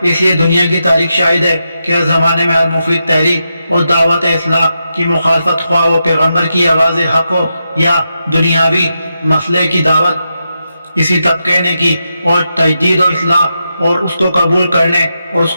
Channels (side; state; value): both; inverted; correlation -0.86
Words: اس لیے دنیا کی تاریخ شاہد ہے کہ ہر زمانے میں ہر مفید تحریک اور دعوت اصلاح کی مخالفت، خواہ وہ پیغمبر کی آواز حق ہو یا دنیاوی مسئلے کی دعوت، اسی طبقے نے کی، اور تجدید و اصلاح اور اس کو قبول کرنے اور اس